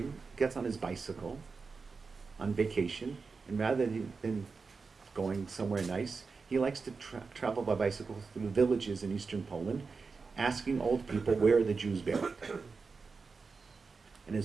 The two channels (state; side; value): quieter; left; 4.6 dB